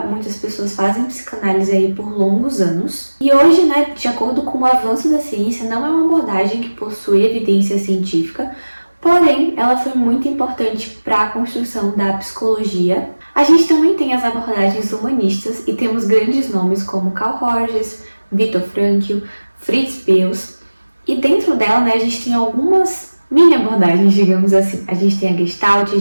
muitas pessoas fazem psicanálise aí por longos anos. E hoje, de acordo com o avanço da ciência, não é uma abordagem que possui evidência científica, porém, ela foi muito importante para a construção da psicologia. A gente também tem as abordagens humanistas e temos grandes nomes como Carl Rogers, Viktor Frankl, Fritz Perls. E dentro dela, a gente tem algumas mini abordagens, digamos assim. A gente tem a Gestalt, a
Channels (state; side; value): inverted; both; correlation -1.00